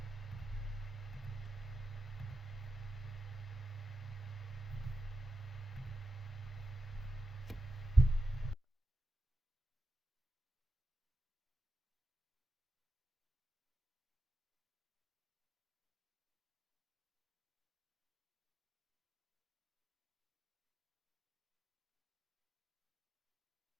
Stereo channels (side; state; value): both; normal; correlation 0.91